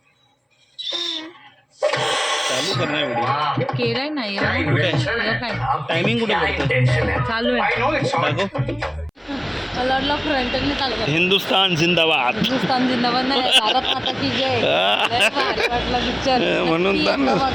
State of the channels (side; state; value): both; identical; correlation 1.00